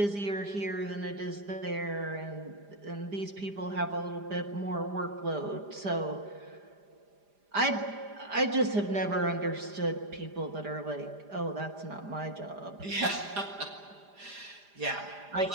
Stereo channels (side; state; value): left; late; 4.9 ms